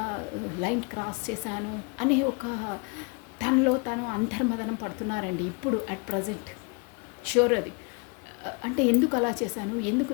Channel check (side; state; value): right; quieter; 32.2 dB